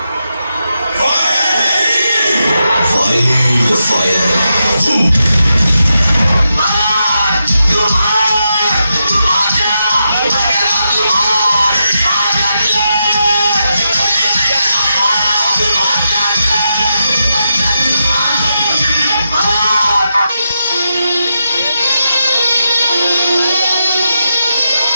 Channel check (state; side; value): inverted; both; correlation -0.86